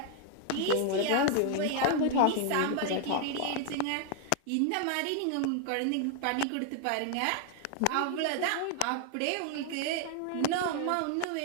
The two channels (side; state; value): both; different; correlation 0.00